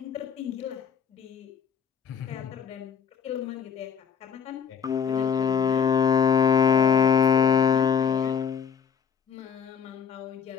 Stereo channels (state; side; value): quieter; right; 6.7 dB